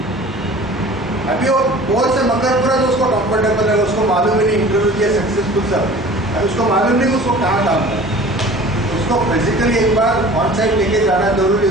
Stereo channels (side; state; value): both; normal; correlation 0.43